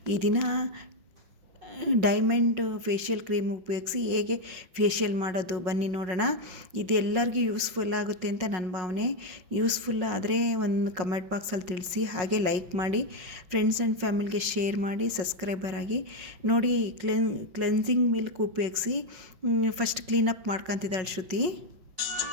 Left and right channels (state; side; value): late; left; 5.5 ms